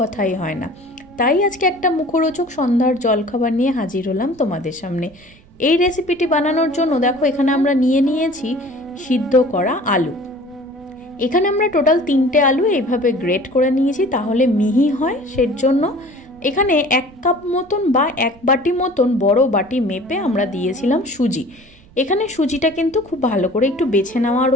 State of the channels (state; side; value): noise; right; rumble, 26 dB below the sound